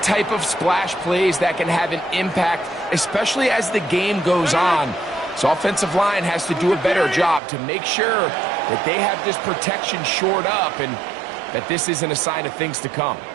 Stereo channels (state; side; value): drops out; left; at 7.4 s